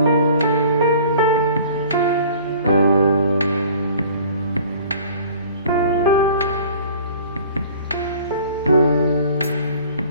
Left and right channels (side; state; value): both; inverted; correlation -0.48